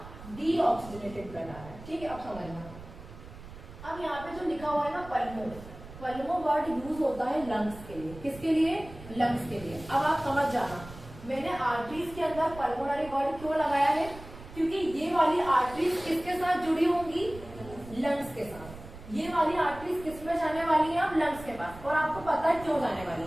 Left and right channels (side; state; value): right; noise; rumble, 16 dB below the sound